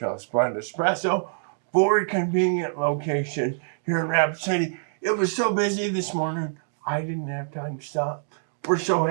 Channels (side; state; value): left; silent; digital silence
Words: Splendid Espresso, 4 convenient locations here in Rapid City. It was so busy this morning, I didn't have time to stop. We're so